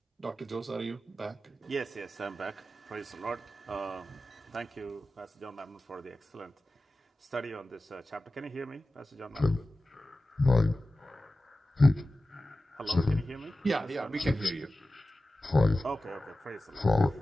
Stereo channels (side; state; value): both; normal; correlation 0.95